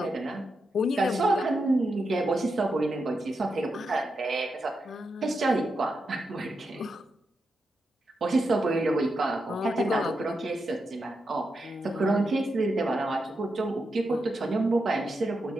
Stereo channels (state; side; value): normal; both; correlation 0.86